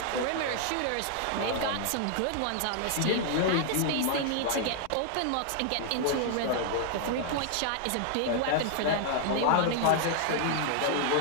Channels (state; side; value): different; both; correlation -0.01